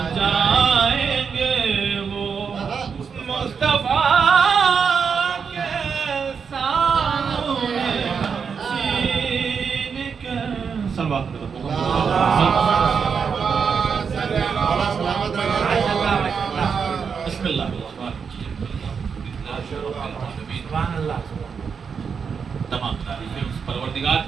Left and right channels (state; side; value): quieter; left; 6.2 dB